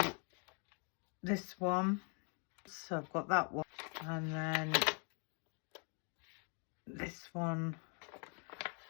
this one. So I've got that one, and then this one,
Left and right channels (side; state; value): right; quieter; 39.2 dB